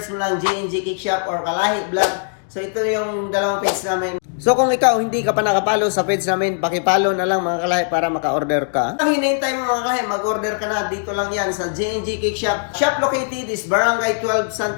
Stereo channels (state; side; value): silent; right; digital silence